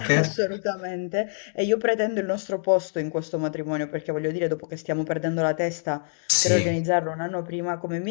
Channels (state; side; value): silent; right; digital silence